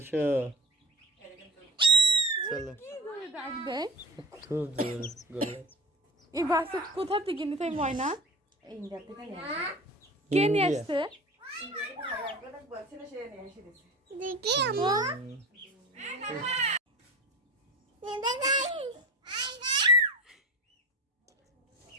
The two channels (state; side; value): normal; both; correlation 0.32